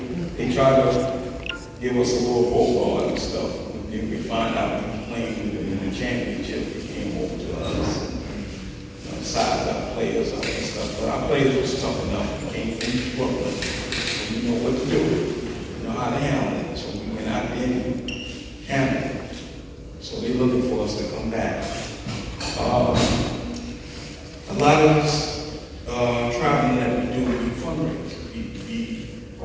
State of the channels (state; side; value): identical; both; correlation 1.00